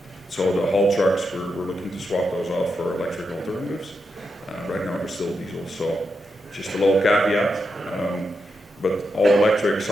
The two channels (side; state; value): both; normal; correlation 0.85